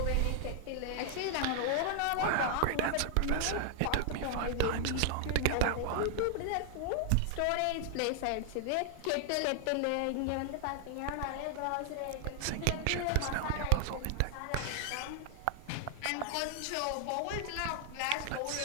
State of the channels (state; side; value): different; both; correlation 0.00